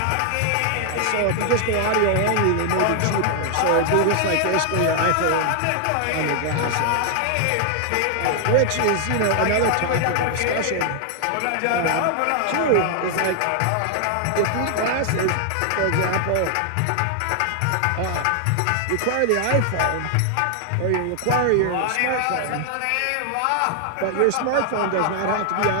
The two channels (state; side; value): different; both; correlation 0.00